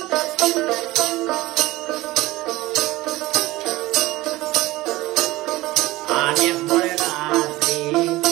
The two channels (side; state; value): left; quieter; 18.7 dB